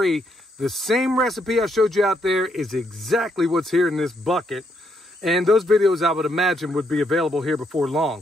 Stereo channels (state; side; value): normal; both; correlation 0.75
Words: the same recipe I showed you out there is exactly what's here in this bucket. And those videos I would imagine would be available here before